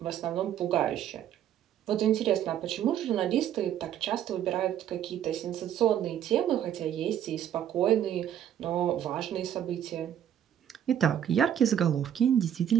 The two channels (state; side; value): quieter; left; 10.1 dB